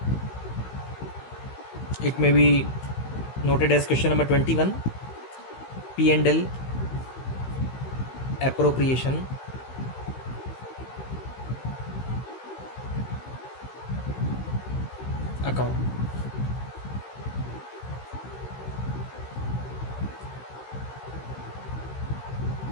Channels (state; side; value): late; right; 15 ms